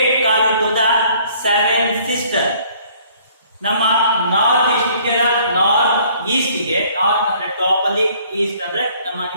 called to the 7 sisters. ನಮ್ಮ ನಾರ್ತ್ ಈಸ್ಟ್ ಇಂಡಿಯಾದ ನಾರ್ತ್ ಈಸ್ಟ್ಗೆ, ನಾರ್ತ್ ಅಂದ್ರೆ ಟಾಪ್ ಅಲ್ಲಿ, ಈಸ್ಟ್ ಅಂದ್ರೆ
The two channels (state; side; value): inverted; both; correlation -0.58